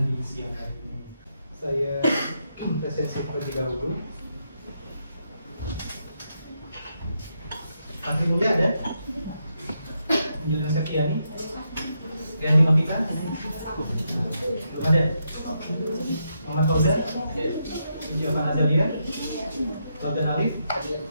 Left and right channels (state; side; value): inverted; both; correlation -0.81